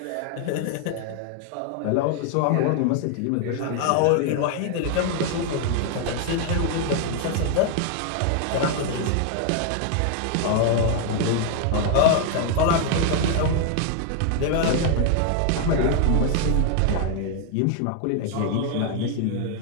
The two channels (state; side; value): different; both; correlation 0.00